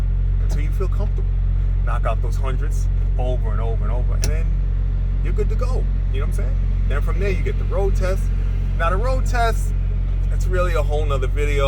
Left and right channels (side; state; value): both; identical; correlation 1.00